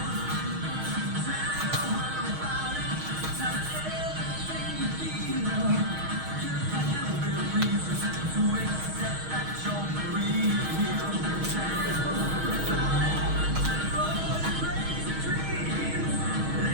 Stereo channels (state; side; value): late; left; 6.3 ms